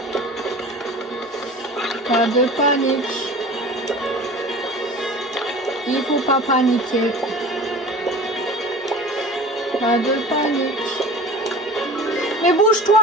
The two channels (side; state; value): both; normal; correlation 0.38